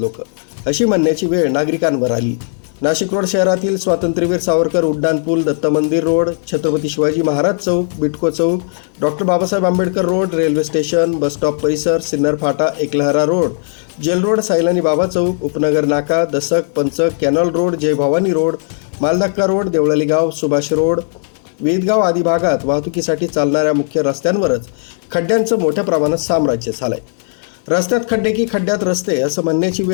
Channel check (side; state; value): right; silent; digital silence